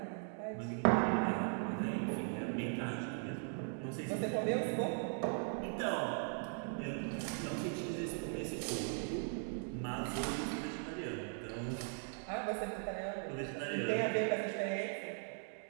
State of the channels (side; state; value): left; silent; 52 dB below the other